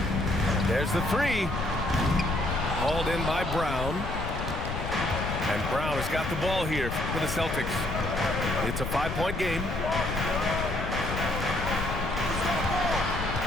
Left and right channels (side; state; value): left; noise; rumble, 5 dB below the sound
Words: There's the 3. Hauled in by Brown. And Brown has got the ball here for the Celtics. It's a 5-point game.